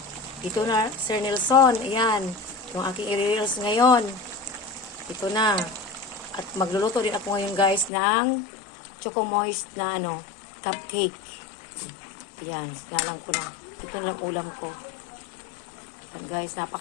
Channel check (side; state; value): right; drops out; at 7.9 s